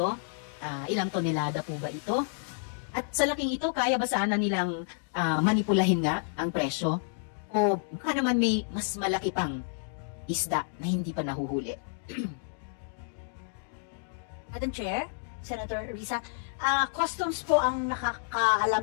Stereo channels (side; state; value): right; silent; digital silence